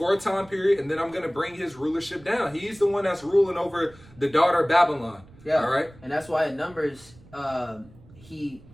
a time period, and then I'm going to bring his rulership down. He's the one that's ruling over the daughter of Babylon. Yeah. All right. And that's why in Numbers, he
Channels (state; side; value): noise; right; rumble, 24 dB below the sound